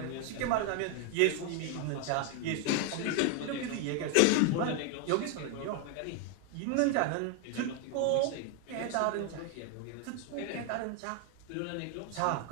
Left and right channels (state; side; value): different; both; correlation 0.01